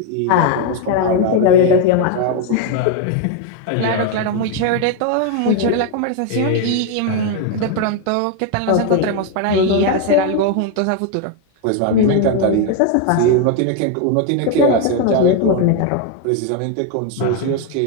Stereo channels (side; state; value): both; different; correlation 0.01